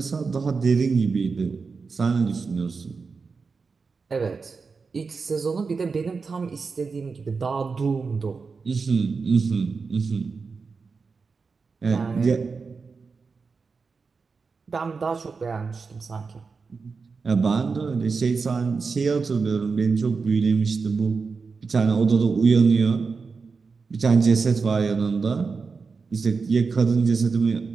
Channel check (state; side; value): quieter; left; 4.8 dB